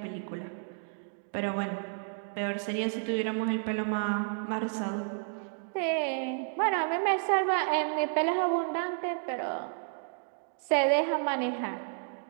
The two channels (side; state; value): left; silent; digital silence